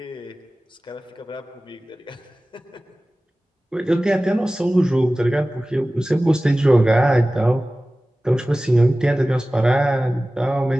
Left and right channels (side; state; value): both; normal; correlation 0.97